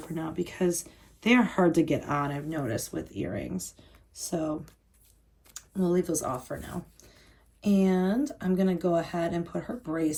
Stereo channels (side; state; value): both; identical; correlation 1.00